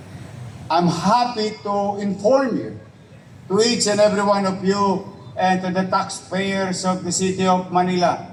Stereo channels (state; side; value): identical; both; correlation 1.00